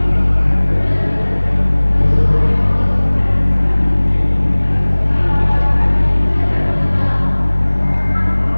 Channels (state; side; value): inverted; both; correlation -1.00